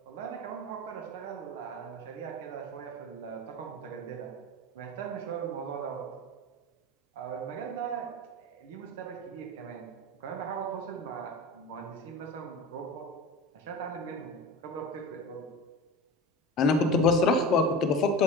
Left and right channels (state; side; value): normal; both; correlation 0.31